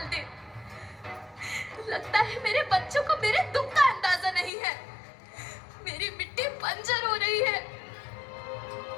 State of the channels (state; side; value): drops out; right; at 4.5 s